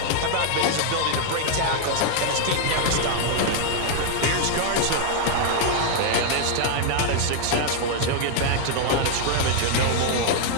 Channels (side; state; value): both; different; correlation -0.01